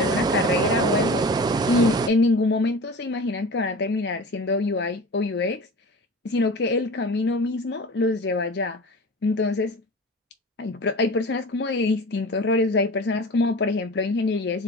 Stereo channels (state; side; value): normal; both; correlation 0.35